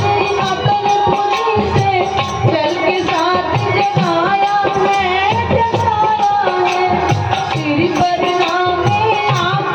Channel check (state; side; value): identical; both; correlation 1.00